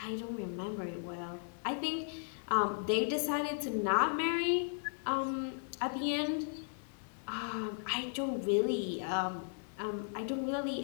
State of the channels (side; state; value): right; silent; digital silence